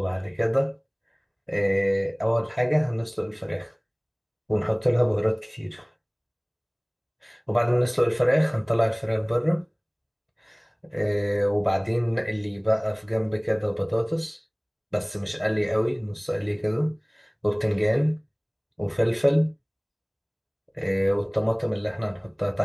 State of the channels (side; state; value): both; identical; correlation 1.00